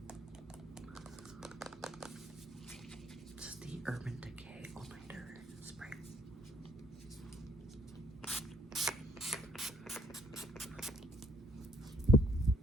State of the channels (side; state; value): both; normal; correlation 0.66